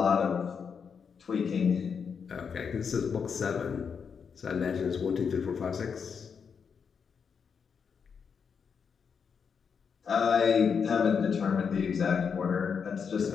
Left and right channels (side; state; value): right; quieter; 6.4 dB